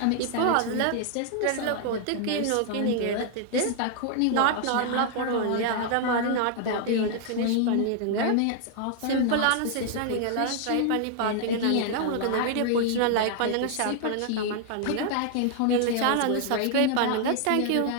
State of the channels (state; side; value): different; both; correlation 0.00